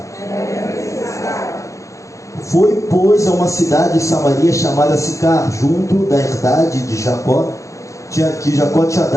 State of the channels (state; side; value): late; right; 0.15 ms